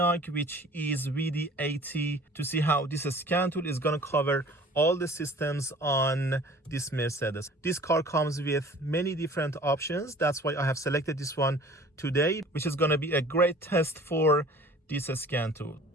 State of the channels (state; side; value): normal; both; correlation 0.48